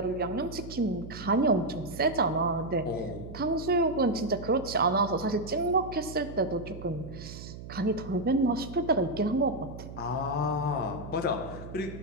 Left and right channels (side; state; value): right; noise; hum, 12 dB below the sound